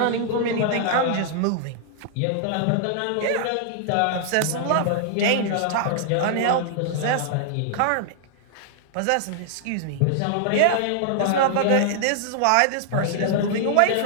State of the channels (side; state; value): both; different; correlation -0.01